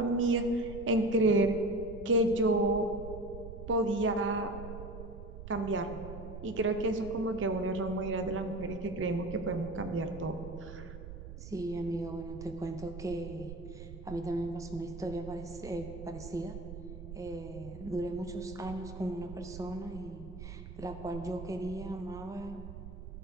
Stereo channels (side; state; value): right; noise; rumble, 11 dB below the sound